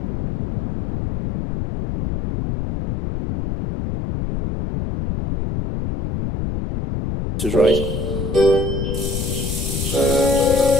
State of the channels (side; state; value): left; noise; rumble, 3 dB below the sound